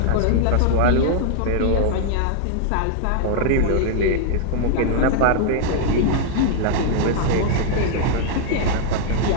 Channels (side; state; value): both; different; correlation 0.00